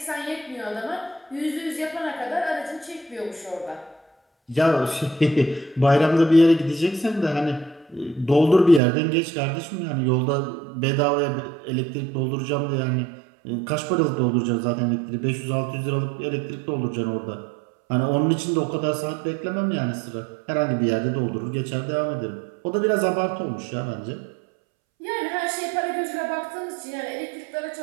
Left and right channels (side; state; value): left; drops out; at 8.8 s